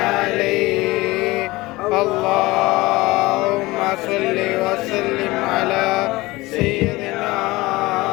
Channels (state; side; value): quieter; right; 20.7 dB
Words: اللهم صل وسلم على سيدنا